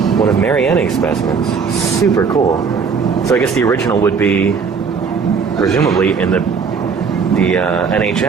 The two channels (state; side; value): quieter; left; 5.7 dB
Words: One of Mary Anning's specimens. Super cool. So I guess the original would be, presumably, in the